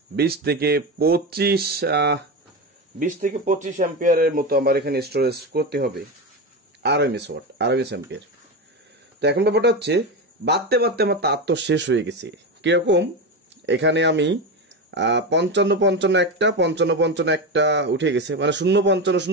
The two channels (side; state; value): both; normal; correlation 0.18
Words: 20 থেকে 25 অ্যাম্পিয়ারের মতো আমার এখানে স্টোরেজ করতে হবে, আরএমএস অ্যাম্পিয়ার। তো এখন ব্যাপারটা হচ্ছে বাড়তে বাড়তে আমার তার তো শেষ হয়ে গেছে। কিরকম, এখানে আমি 55-55 একটা, 55-55 একটা উঠে গেছে, মানে